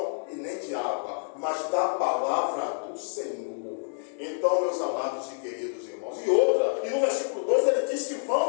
e nem de água, mas da palavra do Senhor. Então, meus amados e queridos irmãos, e no versículo 2 ele diz que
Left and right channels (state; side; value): silent; right; digital silence